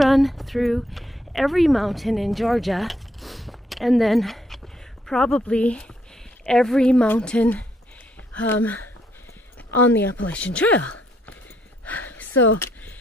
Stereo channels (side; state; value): both; normal; correlation 0.72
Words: through every mountain in Georgia, and then probably every mountain on the Appalachian Trail. So